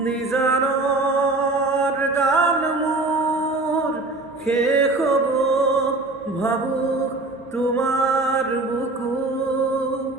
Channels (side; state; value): left; quieter; 3.1 dB